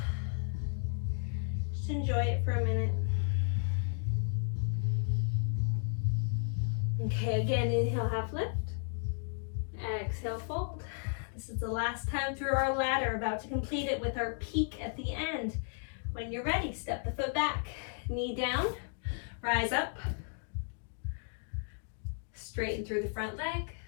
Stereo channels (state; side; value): silent; right; 55 dB below the other